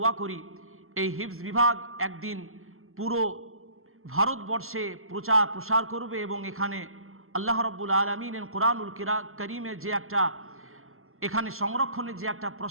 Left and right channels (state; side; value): late; left; 0.62 ms